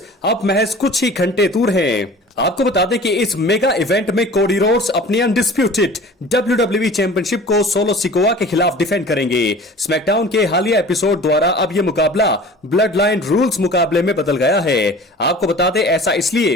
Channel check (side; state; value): both; normal; correlation 0.42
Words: अब महज कुछ ही घंटे दूर हैं। आपको बता दें कि इस मेगा इवेंट में कोडी रोड्स अपनी अनडिस्प्यूटेड WWE चैंपियनशिप को सोलो सिकोआ के खिलाफ डिफेंड करेंगे। स्मैकडाउन के हालिया एपिसोड द्वारा अब यह मुकाबला ब्लड लाइन रूल्स मुकाबले में बदल गया है। आपको बता दें ऐसा इसलिए